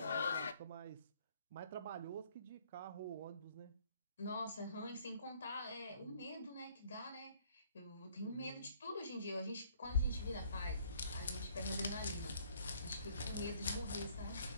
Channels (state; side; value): inverted; both; correlation -0.61